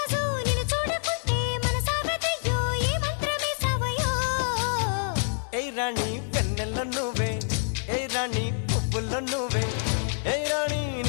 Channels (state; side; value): silent; right; 60 dB below the other